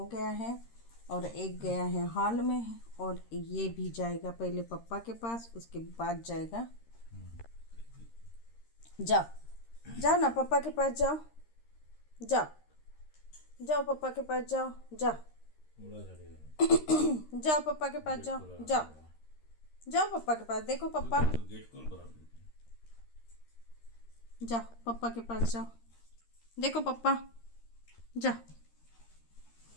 गया है और एक गया है हॉल में और ये भी जाएगा पहले पापा के पास, उसके बाद जाएगा। जाओ जाओ ना, पापा के पास जाओ। जाओ जाओ पापा के पास जाओ। जाओ जाओ पापा के पास जाओ। जाओ जाओ पापा के पास। देखो पापा, जाओ पापा के पास जाओ। देखो पापा, जाओ।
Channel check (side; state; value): right; late; 13 ms